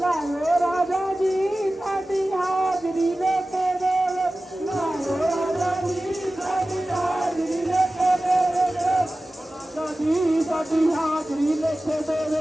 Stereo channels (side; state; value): both; normal; correlation 0.96